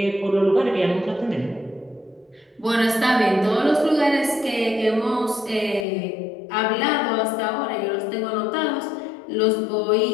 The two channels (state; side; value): drops out; right; at 5.9 s